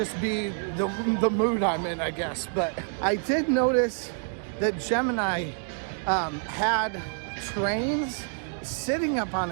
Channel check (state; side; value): silent; left; 60 dB below the other